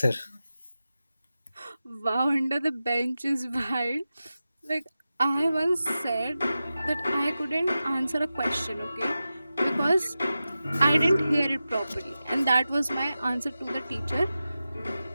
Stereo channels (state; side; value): inverted; both; correlation -0.93